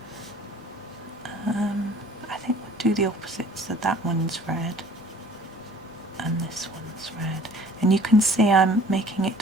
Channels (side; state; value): both; normal; correlation 0.50